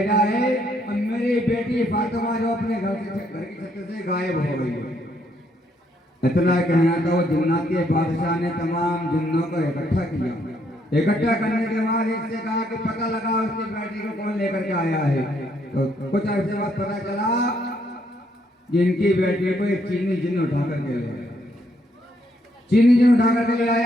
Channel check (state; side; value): normal; both; correlation 0.72